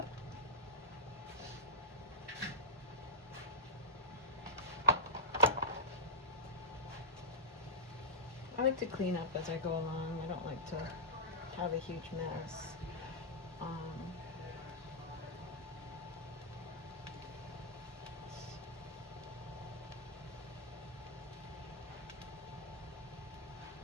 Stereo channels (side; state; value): both; normal; correlation -0.11